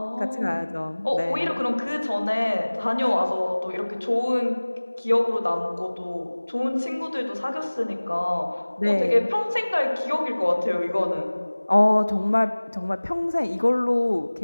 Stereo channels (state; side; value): inverted; both; correlation -1.00